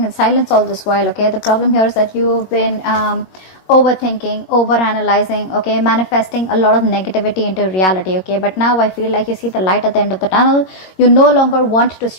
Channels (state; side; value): late; right; 21 ms